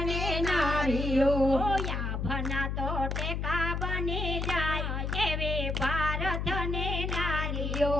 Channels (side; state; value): left; noise; hum, 2 dB below the sound